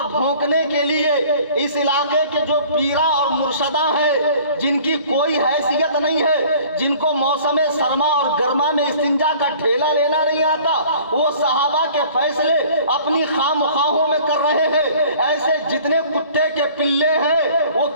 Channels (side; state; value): both; inverted; correlation -0.50